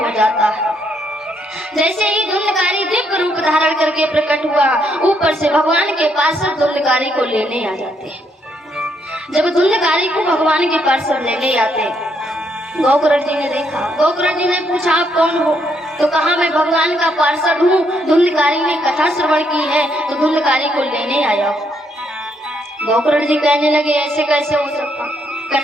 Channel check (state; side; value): normal; both; correlation 0.74